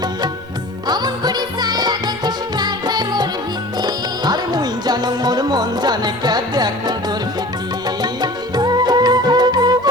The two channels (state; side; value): normal; both; correlation 0.41